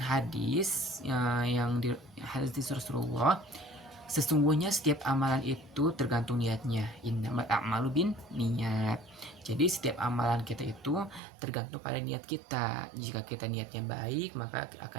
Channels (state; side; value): drops out; left; at 11.2 s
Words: yang di hadis Rasulullah, sesungguhnya setiap amalan itu tergantung niatnya. Innamal a'malu bin niat. Jadi setiap amalan kita itu tergantung pada niat kita. Jika kita niatnya baik, maka